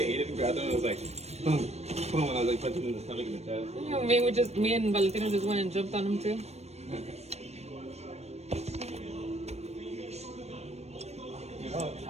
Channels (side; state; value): left; late; 0.31 ms